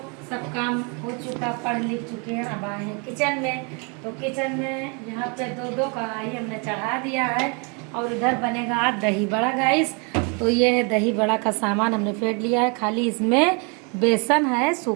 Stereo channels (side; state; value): left; quieter; 34.0 dB